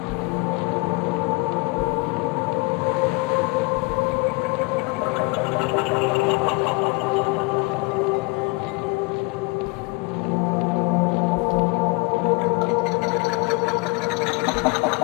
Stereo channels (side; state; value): right; quieter; 27.4 dB